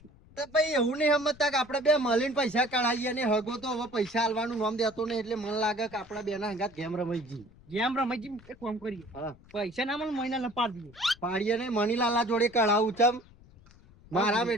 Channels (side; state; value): left; noise; rumble, 24 dB below the sound